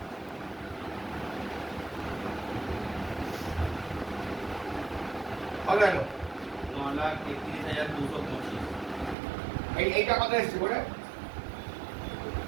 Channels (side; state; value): left; drops out; at 9.2 s